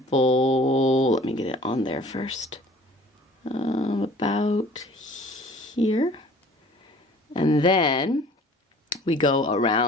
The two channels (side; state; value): both; normal; correlation 0.50